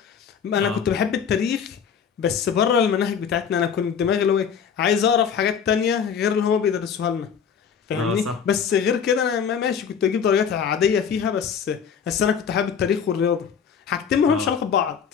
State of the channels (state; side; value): quieter; right; 7.2 dB